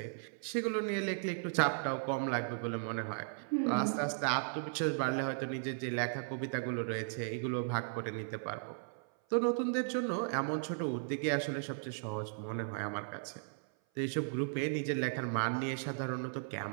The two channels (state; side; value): silent; left; 54 dB below the other